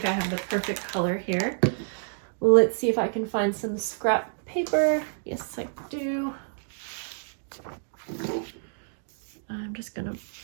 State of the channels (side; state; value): left; silent; digital silence